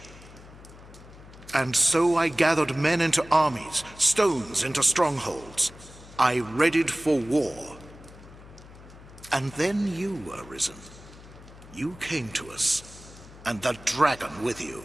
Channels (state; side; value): noise; left; hum, 19 dB below the sound